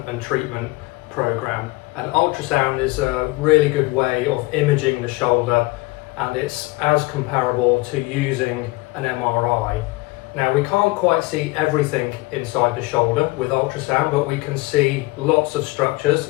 and treatment program. And ultrasound is a really good way of imaging the shoulder, and it's as comparable to using an MRI. Now, we can't quite see everything inside the shoulder with ultrasound, but we can see lots of structures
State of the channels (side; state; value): right; quieter; 22.3 dB